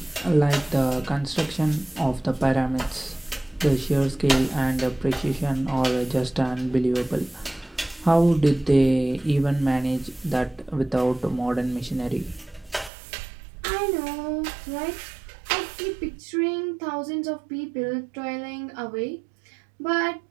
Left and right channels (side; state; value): left; drops out; at 12.9 s